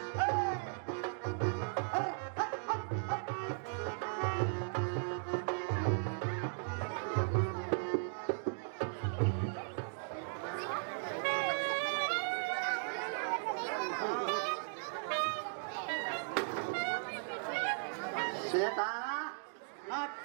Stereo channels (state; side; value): silent; left; digital silence